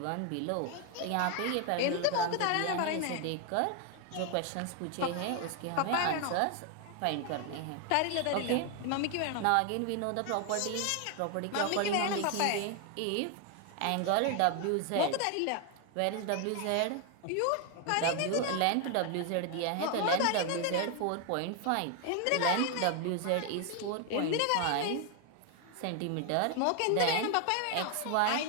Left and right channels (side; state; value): both; different; correlation 0.01